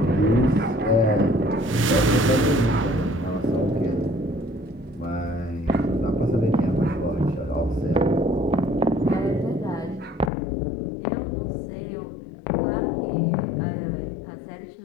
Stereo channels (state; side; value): drops out; right; at 10.3 s